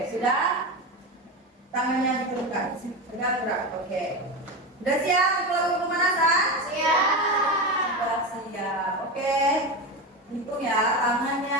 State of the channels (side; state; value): both; normal; correlation 0.20